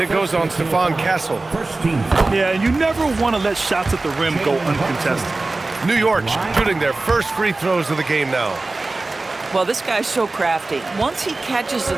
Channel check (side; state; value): left; quieter; 3.3 dB